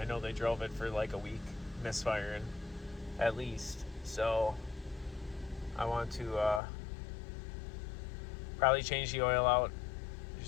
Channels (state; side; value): drops out; right; at 6.6 s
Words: know they drove it for like a week, misfiring at least. So I want to probably change the oil out